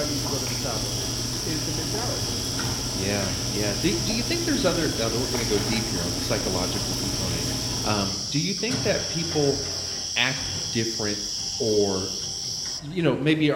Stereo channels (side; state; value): both; identical; correlation 1.00